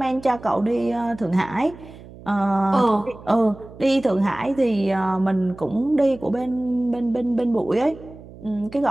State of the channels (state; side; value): noise; right; hum, 18 dB below the sound